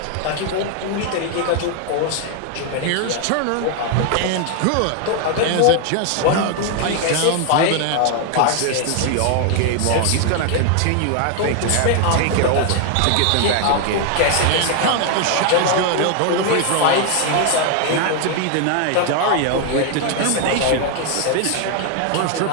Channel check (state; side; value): different; both; correlation 0.00